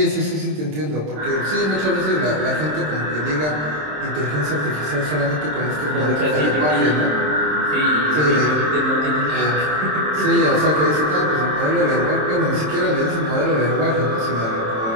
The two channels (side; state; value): left; late; 27 ms